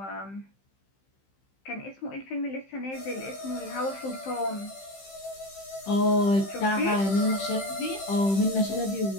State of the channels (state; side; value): late; right; 15 ms